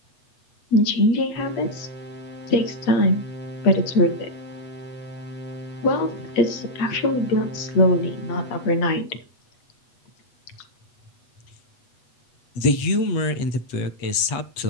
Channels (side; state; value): right; late; 8.5 ms